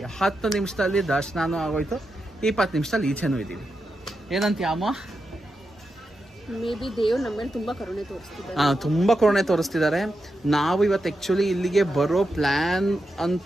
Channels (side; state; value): both; normal; correlation 0.87